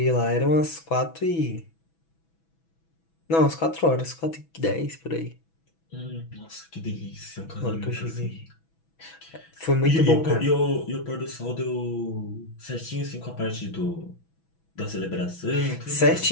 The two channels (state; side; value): late; right; 6.1 ms